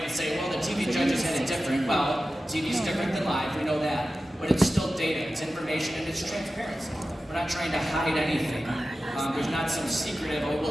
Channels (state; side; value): normal; both; correlation 0.94